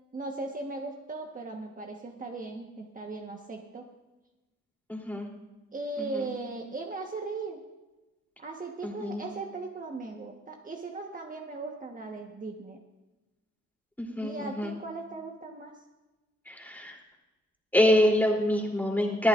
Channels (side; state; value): both; normal; correlation 0.72